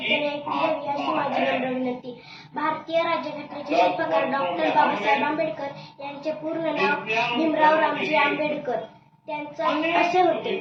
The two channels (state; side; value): identical; both; correlation 1.00